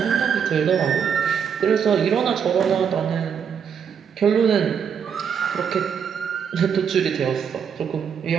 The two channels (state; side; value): quieter; left; 7.3 dB